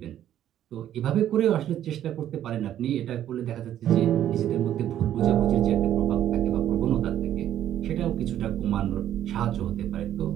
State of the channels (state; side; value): quieter; left; 11.3 dB